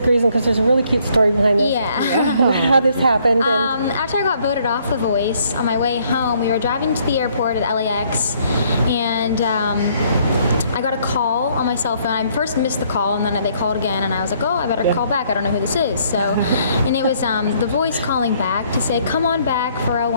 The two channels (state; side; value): inverted; both; correlation -0.66